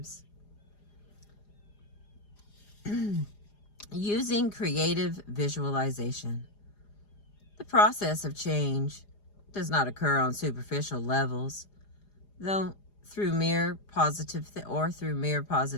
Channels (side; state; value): right; late; 4.9 ms